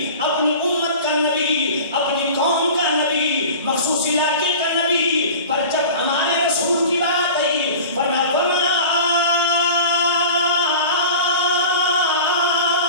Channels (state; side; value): inverted; both; correlation -0.38